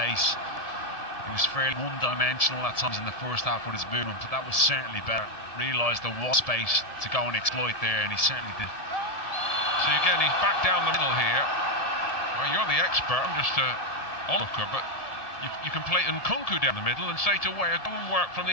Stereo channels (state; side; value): late; right; 1.7 ms